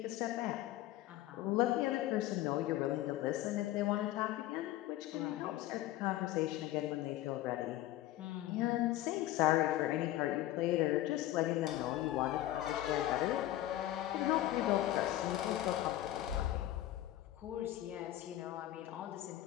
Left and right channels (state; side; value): quieter; right; 14.6 dB